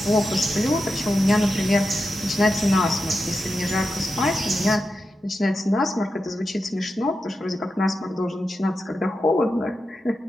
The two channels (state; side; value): normal; both; correlation 0.89